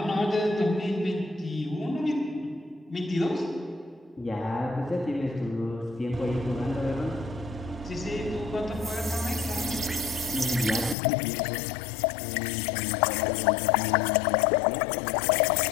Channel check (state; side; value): drops out; right; at 11.0 s